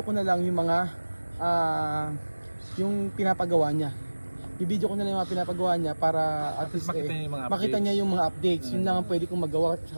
ko na lang yung mga yung pinapagawa niya. I-video ko na lang yung mga pinapagawa niya para at least makita niya yung mga makita updates. niya yung mga updates. Yun lang ang pwede kong magawa sa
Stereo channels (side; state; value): both; inverted; correlation -1.00